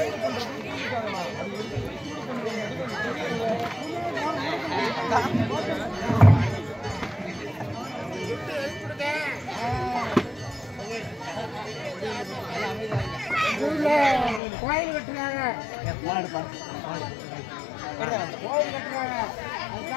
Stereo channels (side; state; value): right; drops out; at 14.4 s